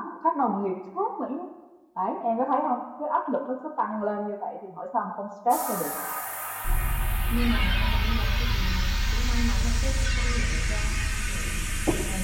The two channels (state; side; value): identical; both; correlation 1.00